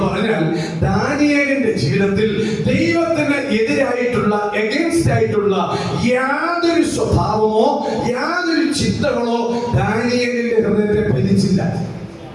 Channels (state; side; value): identical; both; correlation 1.00